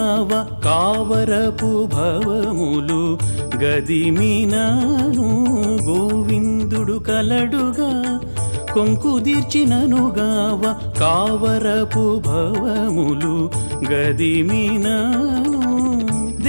కావరపు భవములు గదిమినాను గోవిందుడు కలడుగా కొంకుదీర్చిననుగావ కావరపు భవములు గదిమినాను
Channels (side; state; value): both; inverted; correlation -1.00